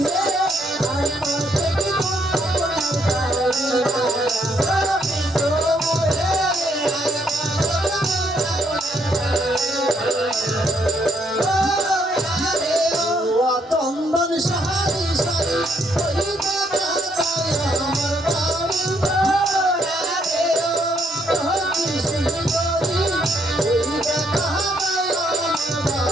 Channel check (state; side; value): normal; both; correlation 0.71